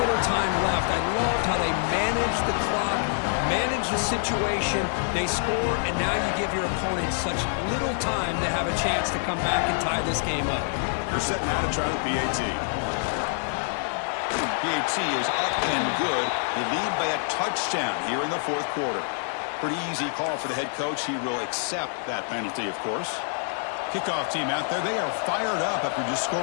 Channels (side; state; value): right; silent; digital silence